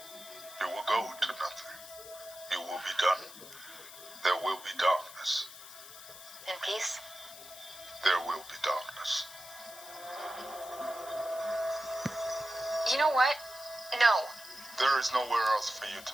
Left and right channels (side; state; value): left; noise; hiss, 15 dB below the sound